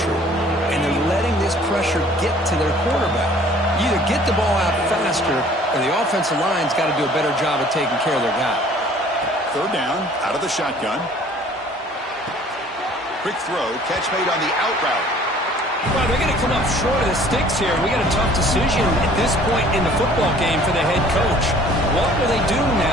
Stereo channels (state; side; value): normal; both; correlation 0.53